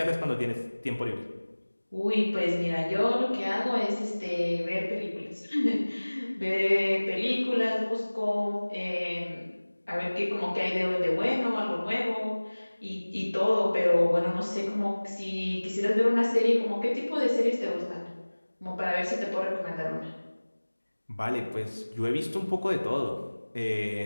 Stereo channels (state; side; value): inverted; both; correlation -1.00